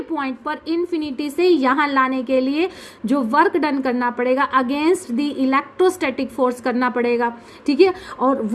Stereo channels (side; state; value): both; identical; correlation 1.00